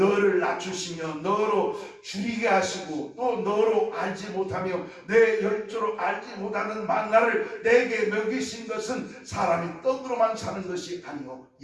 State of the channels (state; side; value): identical; both; correlation 1.00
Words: 낮추시며 너로 줄이게 하시고 또 너로 알지 못하며 내 열조로 알지 못하는 만나를 내게 먹이신 것은 사람이 떡으로만 사는 것이 아니요